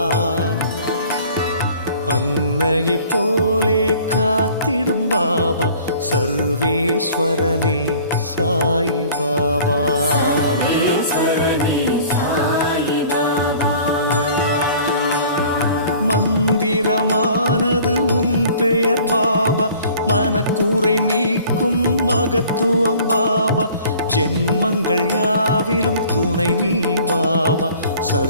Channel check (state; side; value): inverted; both; correlation -0.50